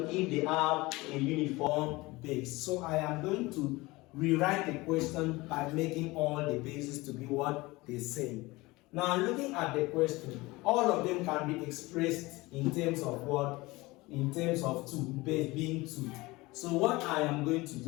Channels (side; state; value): right; quieter; 21.6 dB